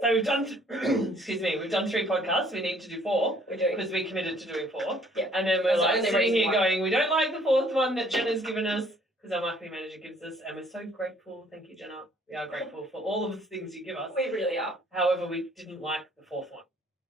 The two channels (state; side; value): normal; both; correlation 0.60